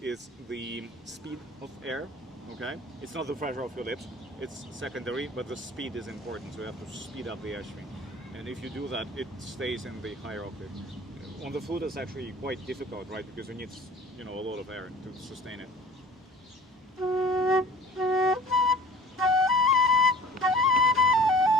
is the speed of air. Okay. It's not the pressure of your lips. It's secondary, but the speed is important. So you have to speed up the airstream. And if you do that, it stays in the higher octave. On the flute, it's actually quite difficult, right? Because you need, a lot of air to sustain it.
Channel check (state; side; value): normal; both; correlation 0.46